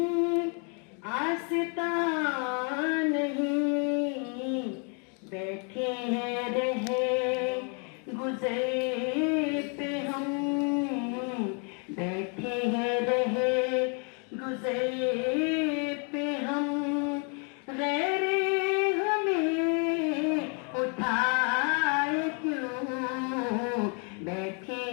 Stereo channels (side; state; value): right; quieter; 38.2 dB